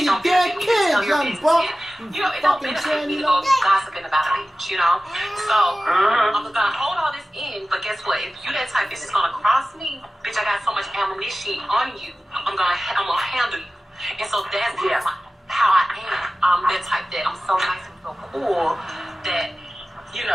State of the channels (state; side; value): normal; both; correlation 0.96